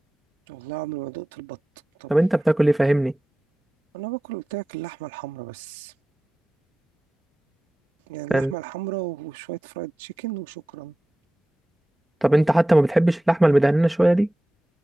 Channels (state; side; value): normal; both; correlation 0.95